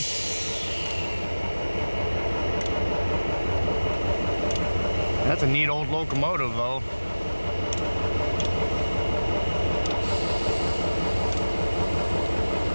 That's a neat old locomotive, though.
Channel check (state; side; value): inverted; both; correlation -1.00